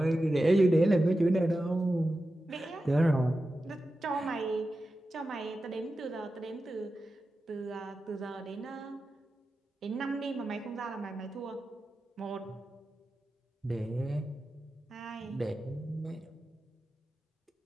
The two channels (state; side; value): normal; both; correlation 0.92